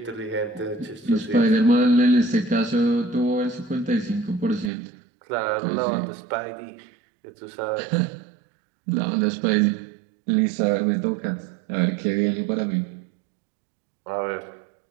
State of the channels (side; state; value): left; drops out; at 4.7 s